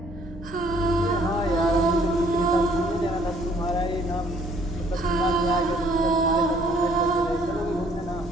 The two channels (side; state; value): both; normal; correlation 0.61